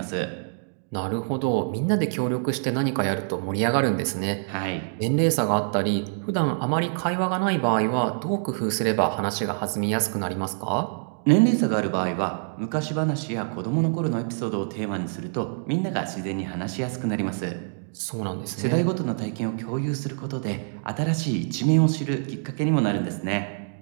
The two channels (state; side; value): silent; left; digital silence